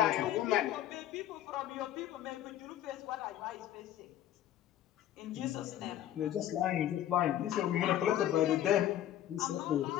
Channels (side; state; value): right; quieter; 12.2 dB